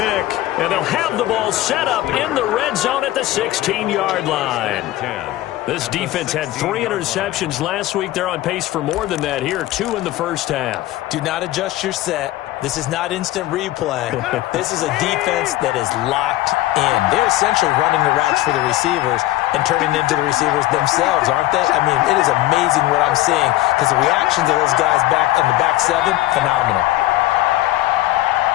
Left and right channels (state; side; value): quieter; right; 16.2 dB